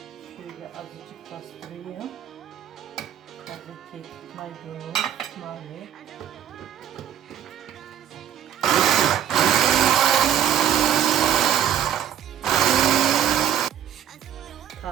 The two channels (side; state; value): left; quieter; 9.9 dB